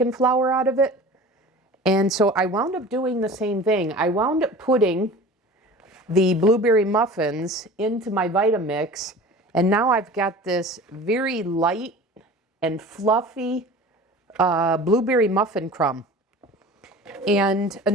flour out of it. And so I wound up doing the same thing. I wound up putting the blueberry muffins into my Vitamix, and now I've got this very light and fluffy blueberry muffin crumb. And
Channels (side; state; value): both; normal; correlation 0.39